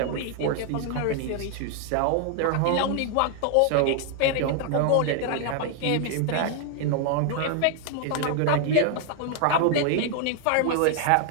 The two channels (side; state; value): both; different; correlation 0.00